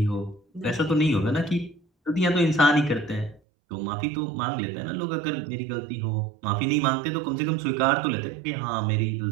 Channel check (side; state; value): left; drops out; at 3.4 s